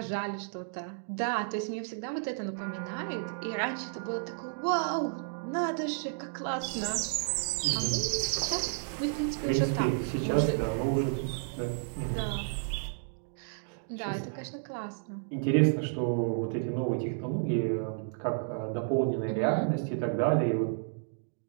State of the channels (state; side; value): silent; left; digital silence